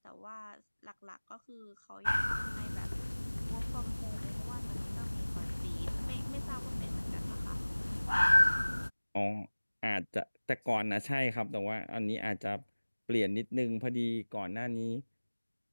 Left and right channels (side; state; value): both; inverted; correlation -1.00